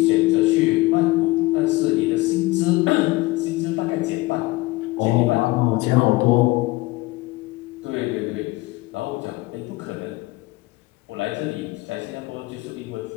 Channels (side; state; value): right; quieter; 20.8 dB